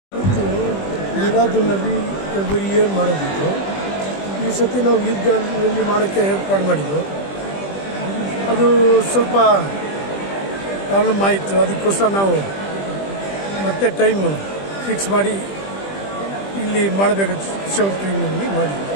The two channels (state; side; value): late; right; 20 ms